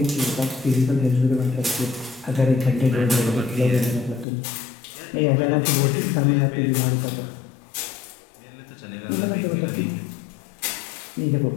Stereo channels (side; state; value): right; drops out; at 4.2 s